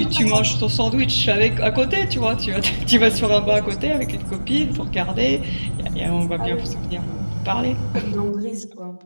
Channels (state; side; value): inverted; both; correlation -1.00